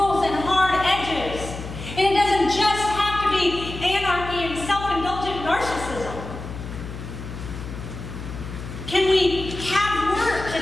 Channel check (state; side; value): noise; left; hum, 10 dB below the sound